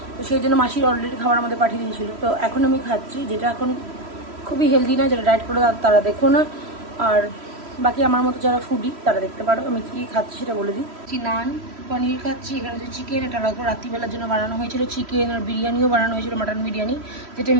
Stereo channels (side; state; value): left; late; 3.1 ms